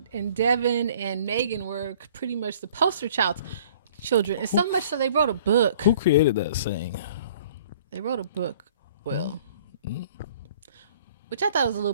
Devin and Megan were pretty much the poster children, and so much so they wrote a book. Who created that saying? They wrote a book. Well, which I thought was a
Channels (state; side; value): inverted; both; correlation -0.53